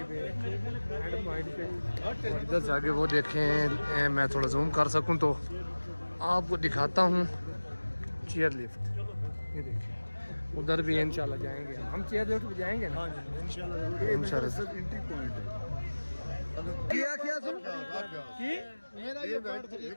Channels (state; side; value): inverted; both; correlation -1.00